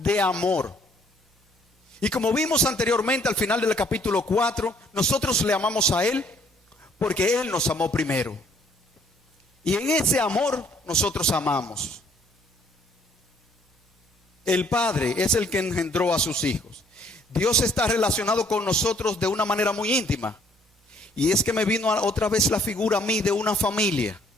de amor. Y como vimos anteriormente al final del capítulo 4, nosotros le amamos a Él porque Él nos amó primero. Y en ese amor nosotros amamos. El Padre es el que engendró a sus hijos. Dios está relacionado con nosotros de una manera muy íntima. Y es que me vino otra vez la figura a mí de una familia.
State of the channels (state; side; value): normal; both; correlation 0.63